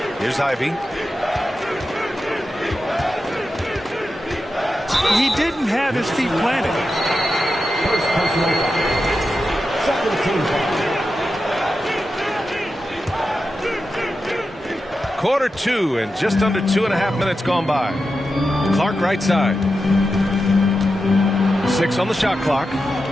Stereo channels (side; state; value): both; normal; correlation 0.90